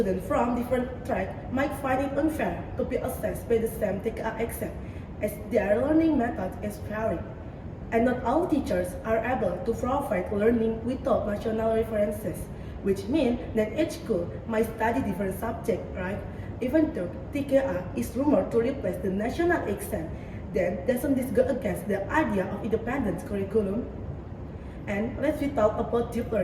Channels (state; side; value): identical; both; correlation 1.00